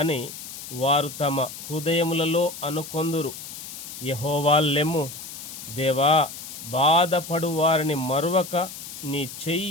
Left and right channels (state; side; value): noise; left; hiss, 11 dB below the sound